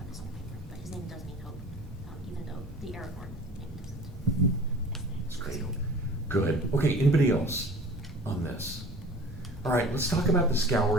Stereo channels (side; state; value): both; normal; correlation 0.43